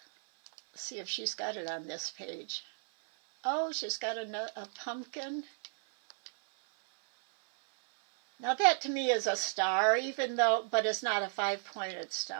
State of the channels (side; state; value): left; silent; 55 dB below the other